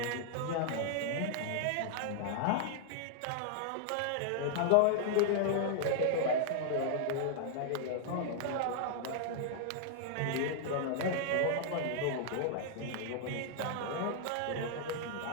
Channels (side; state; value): both; different; correlation -0.01